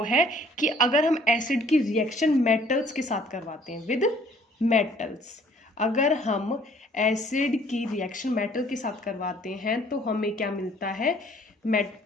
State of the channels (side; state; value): both; normal; correlation 0.58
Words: है कि अगर हम एसिड की रिएक्शन मेटल्स के साथ करवाते हैं, विद मेटल्स, अगर हम एसिड की रिएक्शन मेटल के साथ करवाते हैं तो हमें क्या मिलता है,